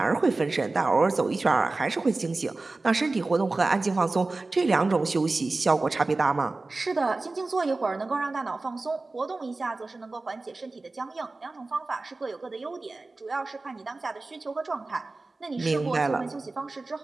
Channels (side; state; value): left; quieter; 3.4 dB